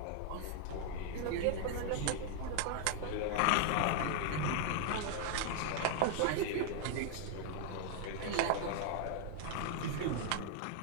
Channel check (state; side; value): different; both; correlation -0.01